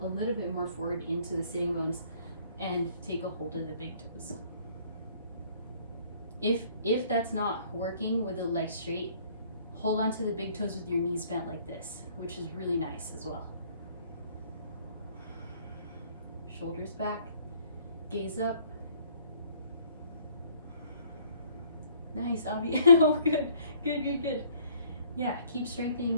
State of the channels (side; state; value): both; inverted; correlation -0.60